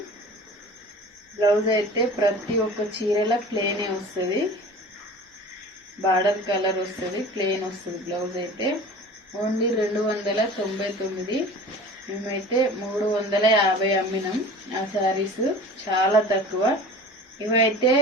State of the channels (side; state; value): both; normal; correlation 0.40